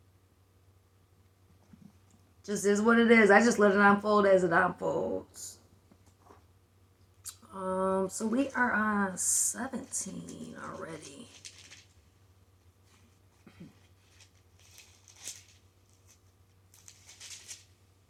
Just is what it is. I just let it unfold as it unfolds. So we are on 17 already.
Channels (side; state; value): both; identical; correlation 1.00